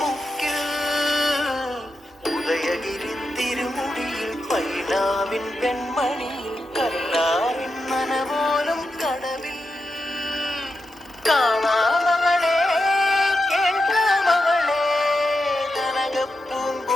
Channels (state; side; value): normal; both; correlation 0.87